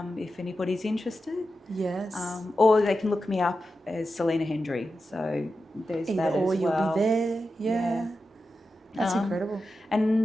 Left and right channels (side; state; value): both; normal; correlation 0.90